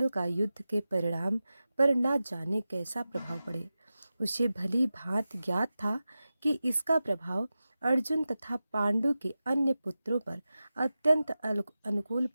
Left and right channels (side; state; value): both; inverted; correlation -0.94